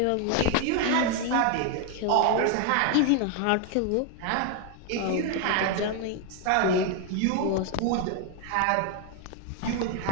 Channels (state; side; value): different; both; correlation 0.01